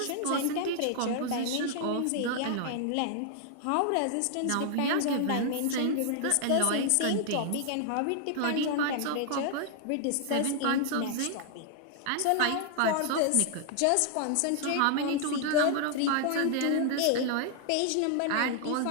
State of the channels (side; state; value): both; different; correlation 0.00